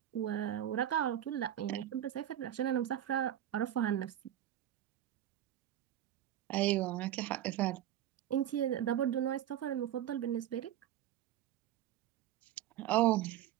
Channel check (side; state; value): left; quieter; 11.7 dB